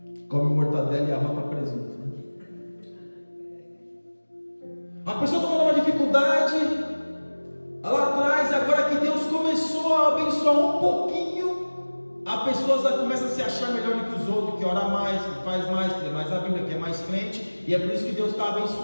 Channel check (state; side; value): inverted; both; correlation -1.00